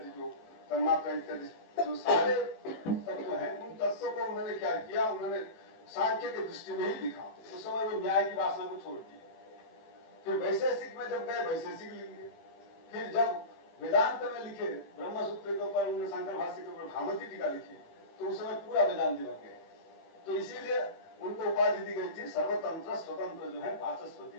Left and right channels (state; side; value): late; right; 18 ms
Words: जो तन्मात्रा इत्यादि जो सारे तत्व हैं, उन तत्वों को उन्होंने क्या किया, उन्होंने सांख्य के दृष्टि में ही लिखा। उस समय वो न्याय की वासना को छोड़ दी। फिर वैशेषिक में जब गए, वैशेषिक लिख लिए। फिर जब वेदांत में लिखे, ब्रह्म सूत्र के ऊपर उन्होंने शंकर भाष्य के ऊपर भामती टीका लिखी, तो उस समय पूरा वेदांति बन गए। तो इसीलिए उनको उपाधि दी गई थी सर्वतंत्र स्वतंत्र जो है वाचस्पति